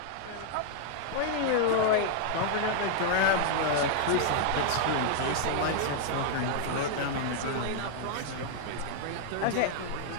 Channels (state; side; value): different; both; correlation 0.00